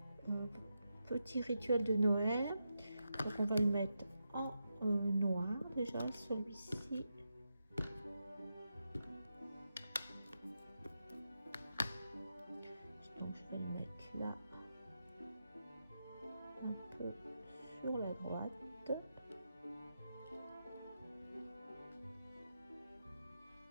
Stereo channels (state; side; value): inverted; both; correlation -0.87